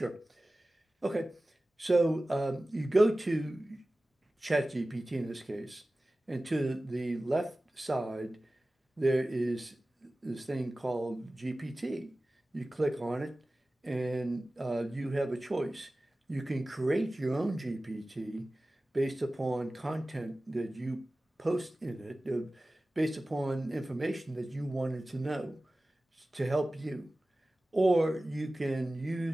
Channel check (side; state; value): both; normal; correlation 0.97